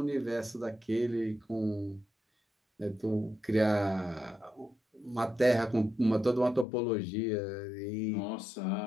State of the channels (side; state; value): right; drops out; at 6.7 s